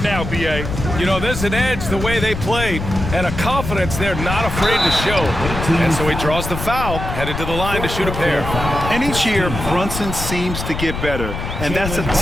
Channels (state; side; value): noise; left; rumble, 6 dB below the sound